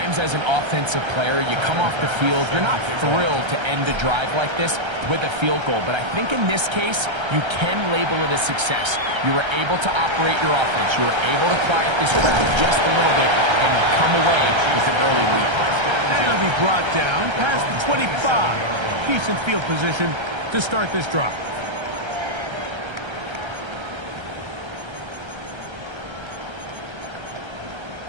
as an offensive player, you come off the field, you're not thrilled to end a drive like this with a field goal. But I think in this case, you can label it a success. You were able to operate your offense. You were able to quiet this crowd just a little bit and come away with an early lead. And it'll be brought down past the 25. Decent field position to start this drive.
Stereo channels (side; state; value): left; late; 1.3 ms